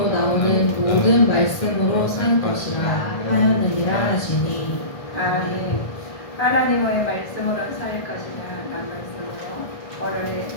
나오는 모든 말씀으로 살 것이라 하였느니라 하시니. 아멘. 하나님의 말씀으로 살 것이라 라는 말씀으로 오늘에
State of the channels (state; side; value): late; right; 1.4 ms